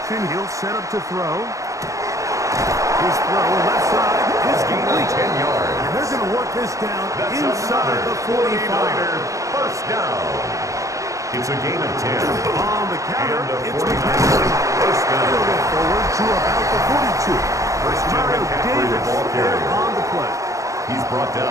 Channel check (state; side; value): late; left; 0.16 ms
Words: he'll set up to throw. His throw left side is complete. 10 yards. And they're going to work this down inside the 45. 49er first down. It's a gain of 10. On the counter, it's McCaffrey. First down. They'll go forward to about the 42. First time McCaffrey, the ball carrier. On the play. He's brought